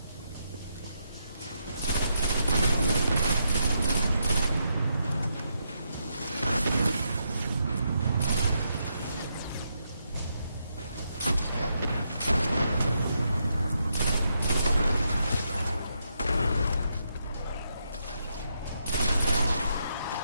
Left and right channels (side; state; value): both; inverted; correlation -0.80